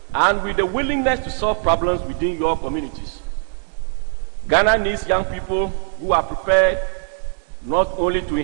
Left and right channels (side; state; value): left; silent; 65 dB below the other